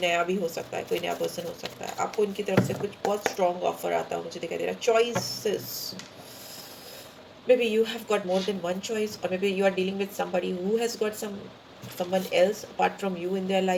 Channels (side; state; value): both; identical; correlation 1.00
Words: नया भी हो सकता है, कोई नया पर्सन हो सकता है। आपको इनकी तरफ से कुछ बहुत स्ट्रॉन्ग ऑफर आता हुआ मुझे दिखाई दे रहा है। Choices, maybe you have got more than one choice, or maybe you are dealing with somebody who has got someone else apart from you in their